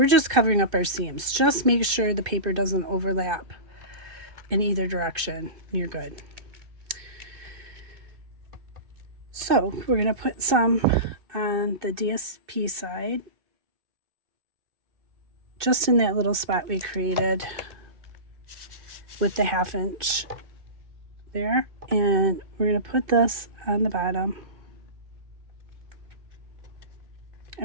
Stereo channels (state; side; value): late; left; 2.6 ms